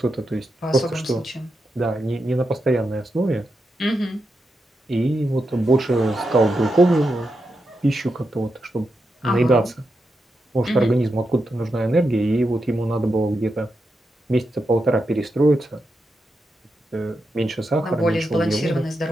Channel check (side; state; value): both; normal; correlation 0.86